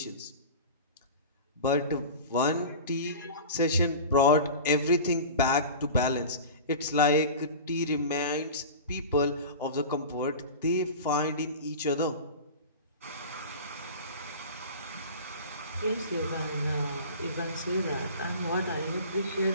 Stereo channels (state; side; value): inverted; both; correlation -0.34